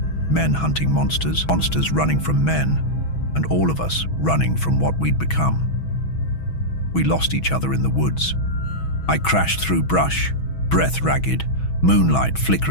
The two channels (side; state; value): right; late; 6.2 ms